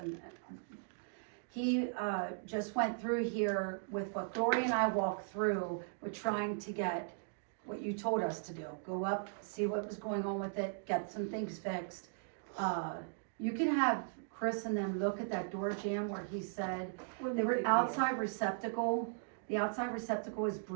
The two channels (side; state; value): left; silent; digital silence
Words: and he, just went through here with what Gloria and I walked through, we're trying to get what you told us to do, go up, see what was going on with it, get some things fixed. You can have Chris and them look at that door jamb where he said, the outside receptacle, the outside receptacle is